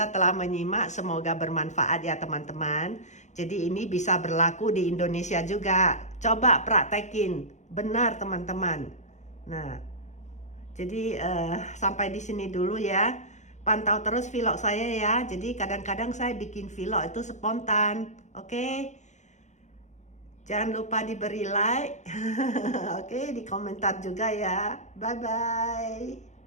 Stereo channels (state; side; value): late; right; 0.34 ms